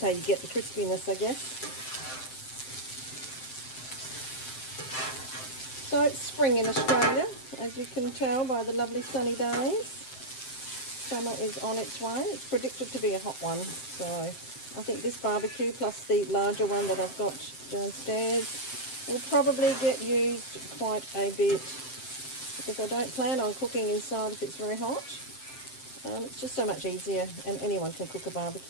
you get the crispiness, I guess. So it's spring in Australia, as you can tell by the lovely sunny days. Summer is on its way. It's predicted to be a hot one. So I think this barbecue plus the larger one that I've got downstairs will probably get used quite a bit because I don't plan on cooking inside if it's very hot. It's just so much easier, and anyone can cook a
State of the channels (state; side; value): late; right; 7.7 ms